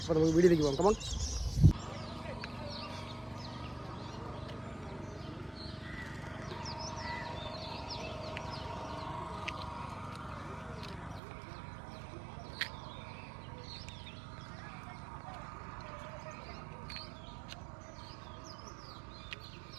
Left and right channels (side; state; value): left; drops out; at 11.2 s